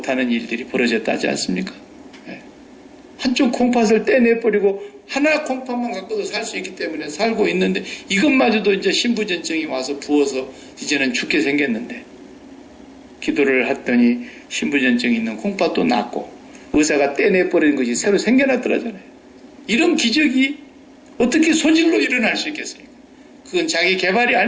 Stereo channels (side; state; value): both; identical; correlation 1.00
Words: 일들이 벌어졌다 하지 않습니까? 네. 한쪽 콩팥을 떼내버리고 하나 콩팥만 갖고도 살 수 있기 때문에 살고 있는데 이것마저도 이제 신부전증이 와서 부어서 이제는 죽게 생겼는데 기도를 했더니 신부전증이 있는 콩팥도 낫고 의사가 떼내버리는 것이 새로 생겨났더라잖아요. 이런 기적이 어떻게 소질로 일어날 수 있겠습니까? 그건 자기 개발이